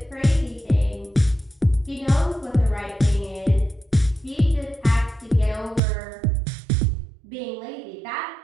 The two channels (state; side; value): drops out; left; at 5.8 s